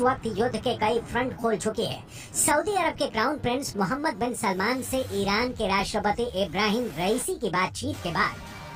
वक्त युद्ध के कई फ्रंट खोल चुकी है। सऊदी अरब के क्राउन प्रिंस मोहम्मद बिन सलमान से ईरान के राष्ट्रपति इब्राहिम रईसी की बातचीत के बाद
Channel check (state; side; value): identical; both; correlation 1.00